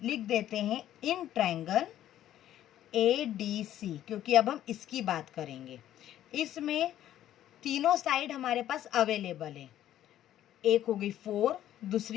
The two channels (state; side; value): quieter; right; 12.1 dB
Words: लिख देते हैं इन ट्रायंगल ADC, क्योंकि अब हम इसकी बात करेंगे। इसमें तीनों साइड हमारे पास अवेलेबल है, एक हो गई 4,